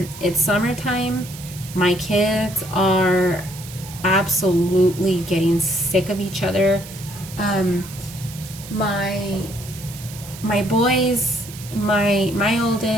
summertime. My kids are absolutely getting sick of each other. Um, my my boys, my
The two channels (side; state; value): right; noise; hiss, 15 dB below the sound